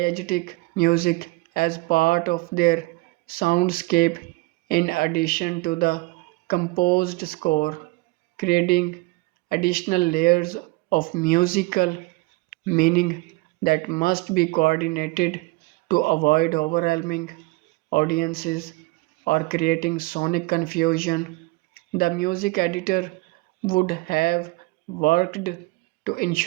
music as part of their soundscape in addition to the composed score, creating additional layers of musical meaning that must be coordinated to avoid overwhelming audiences or creating sonic confusion. The music editor would have worked to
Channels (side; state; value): left; quieter; 23.2 dB